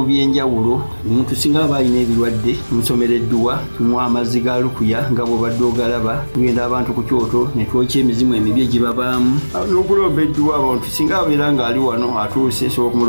by'enjawulo omuntu singa aba alina ebirwadde musomereddwa tunywa amazzi ga lukuya nga bw'obadde ogalaba tugenda abantu ku kyoto ne twokya emizimu emibi egibabaamu n'okulomba edduwa abantu singa abeera nga ali wano atuuse sobola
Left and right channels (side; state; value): both; inverted; correlation -1.00